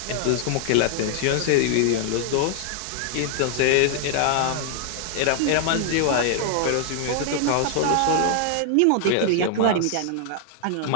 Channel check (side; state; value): both; different; correlation 0.00